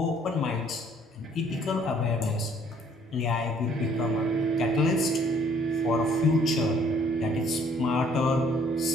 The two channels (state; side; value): normal; both; correlation 0.61